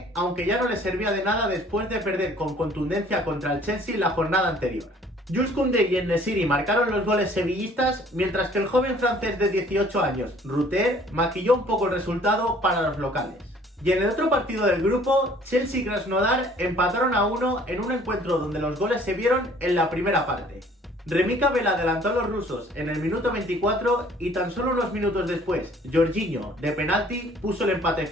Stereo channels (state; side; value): normal; both; correlation 0.55